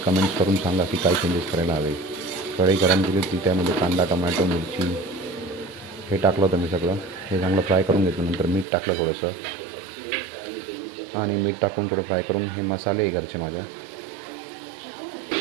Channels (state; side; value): drops out; left; at 8.7 s